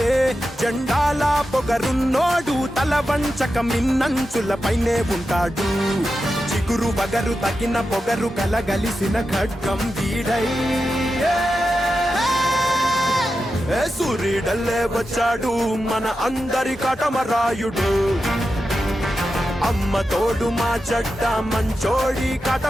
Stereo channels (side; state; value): both; normal; correlation 0.90